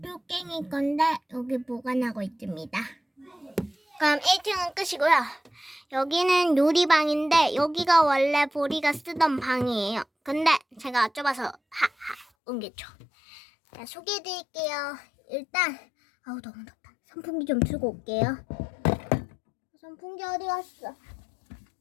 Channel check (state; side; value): drops out; right; at 12.2 s